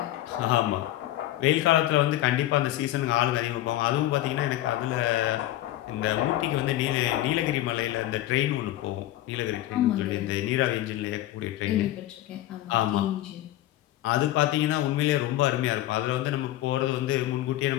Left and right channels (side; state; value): right; quieter; 14.7 dB